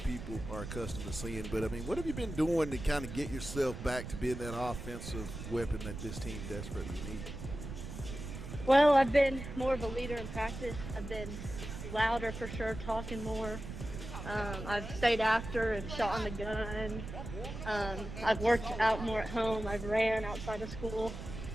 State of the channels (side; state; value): right; noise; rumble, 9 dB below the sound